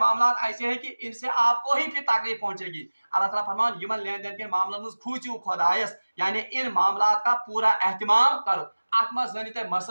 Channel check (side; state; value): both; inverted; correlation -1.00